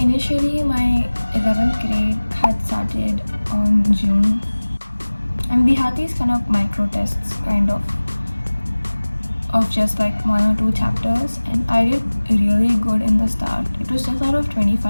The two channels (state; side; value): inverted; both; correlation -1.00